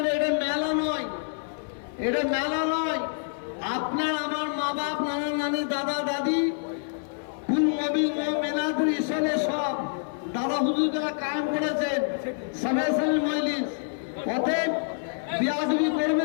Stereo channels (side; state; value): right; silent; 59 dB below the other